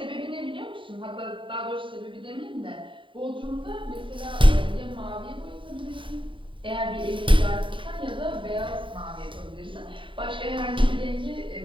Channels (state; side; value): late; left; 0.25 ms